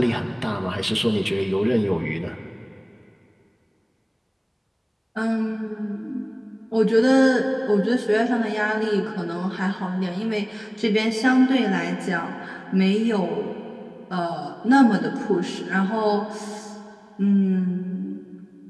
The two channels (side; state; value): both; identical; correlation 1.00